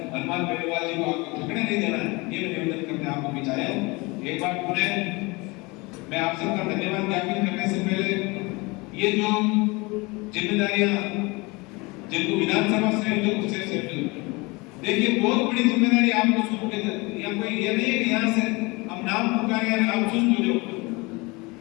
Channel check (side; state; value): right; quieter; 25.4 dB